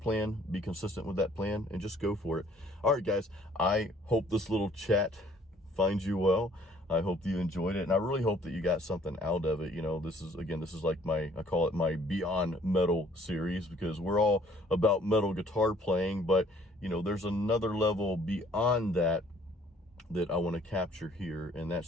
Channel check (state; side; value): normal; both; correlation 0.59